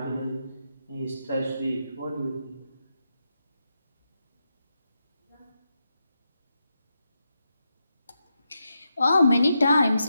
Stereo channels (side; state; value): both; inverted; correlation -0.85